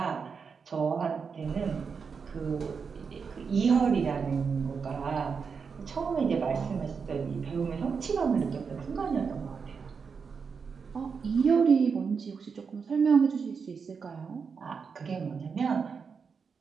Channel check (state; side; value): quieter; left; 5.7 dB